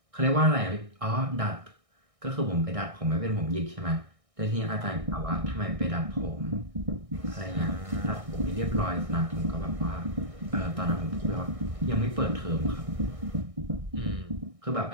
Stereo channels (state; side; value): late; left; 1.6 ms